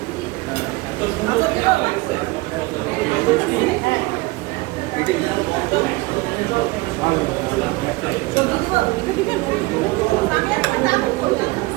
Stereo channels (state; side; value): quieter; left; 22.7 dB